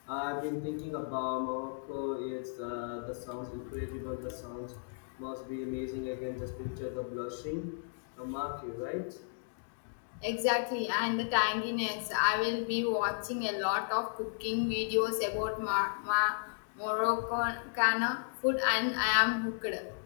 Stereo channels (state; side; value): silent; right; digital silence